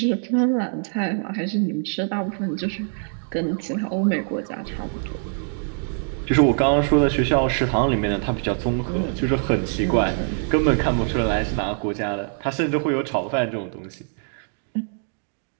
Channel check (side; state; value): left; silent; 63 dB below the other